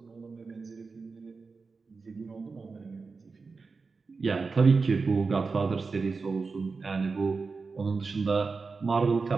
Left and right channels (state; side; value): quieter; left; 4.5 dB